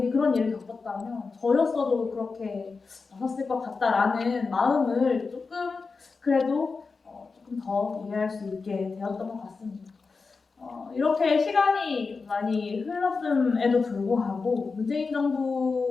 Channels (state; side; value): quieter; right; 4.5 dB